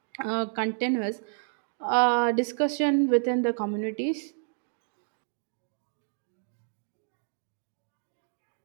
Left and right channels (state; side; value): silent; left; digital silence